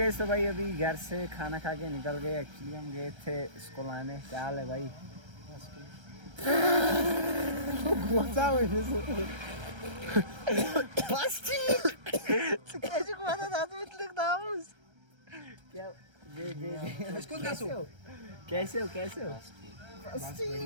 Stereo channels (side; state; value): left; late; 1.3 ms